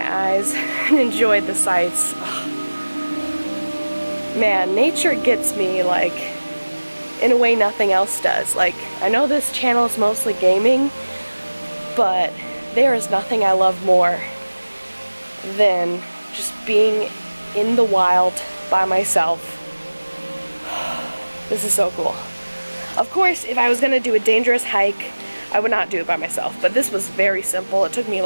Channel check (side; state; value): both; inverted; correlation -1.00